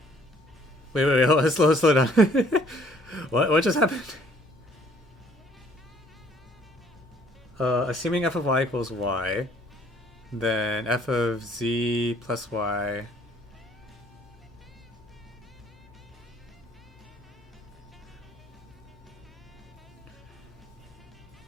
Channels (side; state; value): both; normal; correlation 0.60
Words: Wait, hold on, slow down. What just happened? Assuming f of y equals y, then f of z plus y